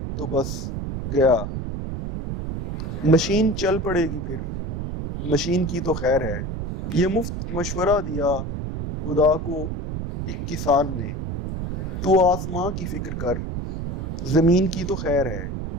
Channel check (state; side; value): noise; right; rumble, 4 dB below the sound